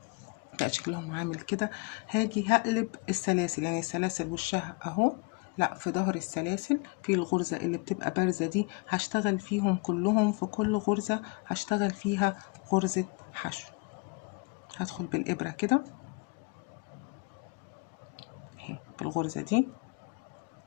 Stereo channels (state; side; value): quieter; right; 29.9 dB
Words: بقى شكلهم عامل كده. هاجي هقلب السلاسل، يعني السلاسل وشها اهو، لا في ظهر السلاسل في الغرزة اللي بتبقى بارزة دي هشتغل فيهم كلهم. في كل غرزة هشتغل فيها غرزة حشو. هدخل بالإبرة كده اهي بالغرزة دي،